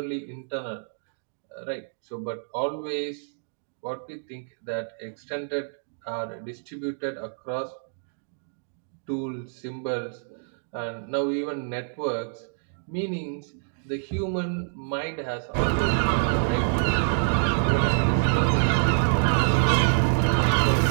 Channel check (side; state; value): left; silent; digital silence